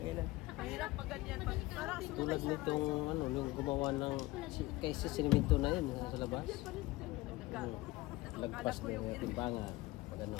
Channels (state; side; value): quieter; right; 19.7 dB